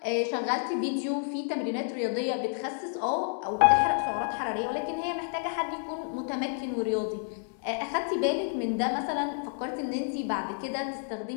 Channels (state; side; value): silent; right; 58 dB below the other